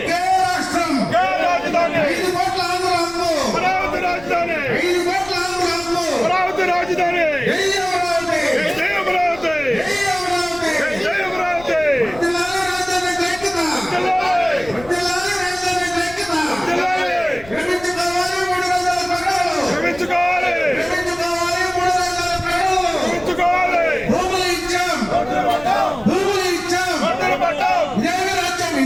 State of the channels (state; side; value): noise; left; rumble, 19 dB below the sound